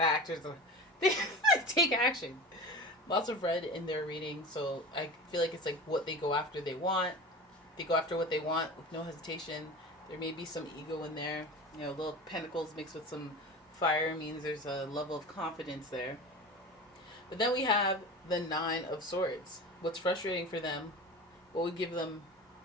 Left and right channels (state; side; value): normal; both; correlation 0.32